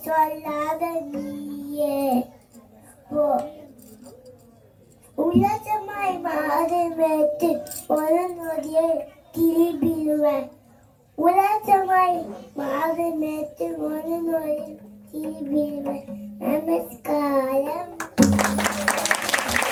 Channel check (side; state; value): both; identical; correlation 1.00